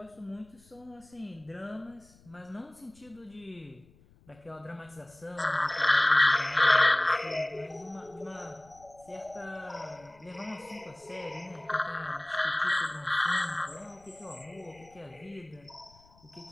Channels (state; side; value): noise; left; rumble, 27 dB below the sound